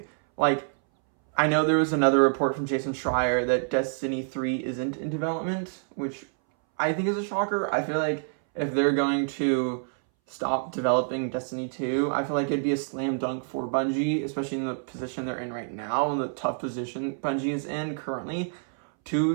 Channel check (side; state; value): left; silent; 60 dB below the other